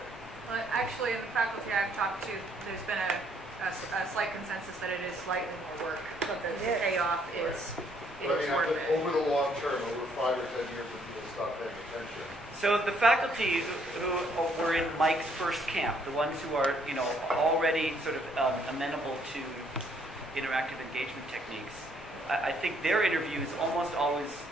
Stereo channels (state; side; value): normal; both; correlation 0.68